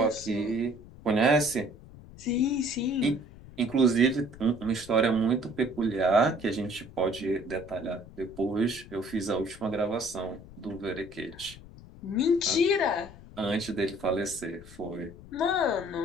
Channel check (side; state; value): left; noise; rumble, 18 dB below the sound